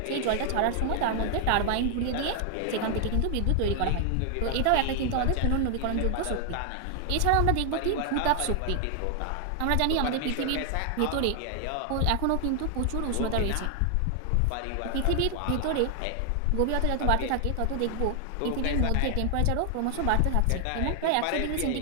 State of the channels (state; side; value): different; both; correlation 0.00